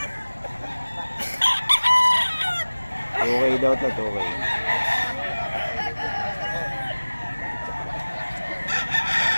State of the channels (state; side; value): inverted; both; correlation -1.00